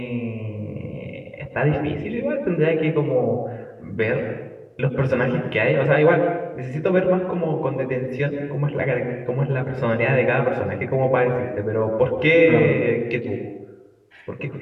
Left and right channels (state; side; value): identical; both; correlation 1.00